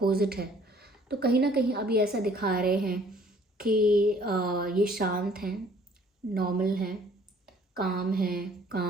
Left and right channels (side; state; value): both; normal; correlation 0.57